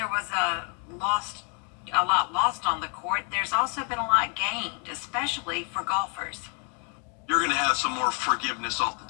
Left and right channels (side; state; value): right; quieter; 32.9 dB